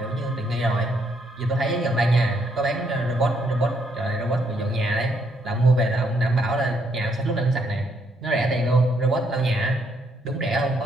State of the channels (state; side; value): normal; both; correlation 0.73